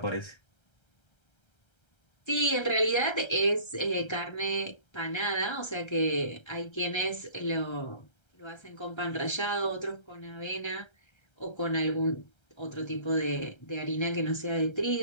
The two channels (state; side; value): late; right; 1.3 ms